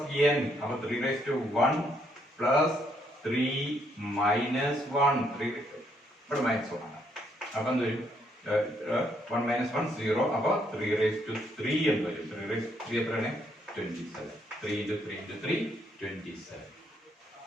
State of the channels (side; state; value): both; normal; correlation 0.72